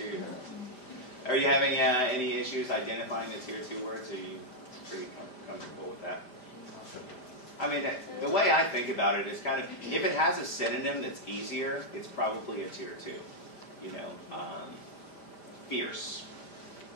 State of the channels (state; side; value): late; right; 5.0 ms